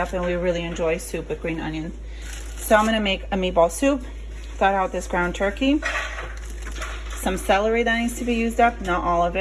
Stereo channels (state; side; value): identical; both; correlation 1.00